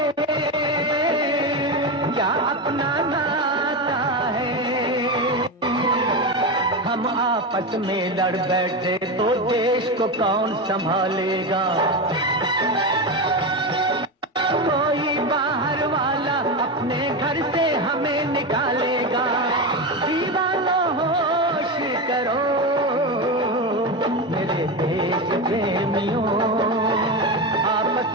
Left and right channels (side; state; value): both; normal; correlation 0.16